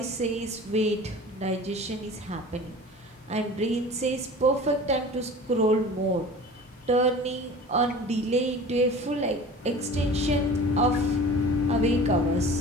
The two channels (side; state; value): both; normal; correlation 0.40